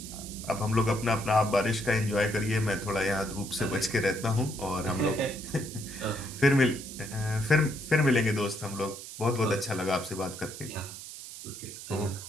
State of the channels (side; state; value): right; noise; hiss, 12 dB below the sound